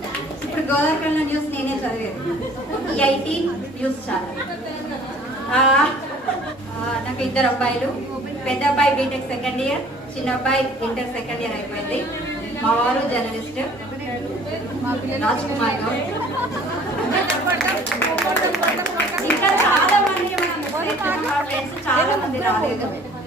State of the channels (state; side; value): normal; both; correlation 0.52